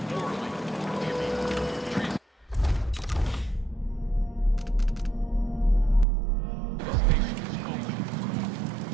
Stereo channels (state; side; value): drops out; left; at 6.1 s